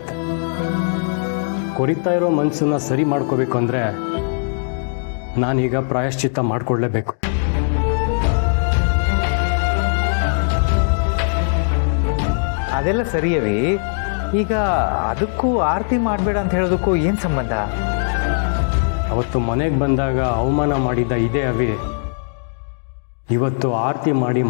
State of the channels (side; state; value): right; silent; digital silence